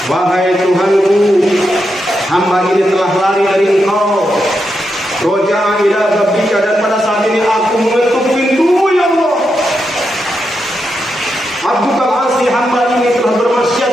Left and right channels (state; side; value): normal; both; correlation 0.85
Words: wahai Tuhanku, hamba ini telah lari dari engkau. Roja ila babika, dan pada saat ini aku mengetuk pintu ya Allah. Abdukal asi, hamba ini telah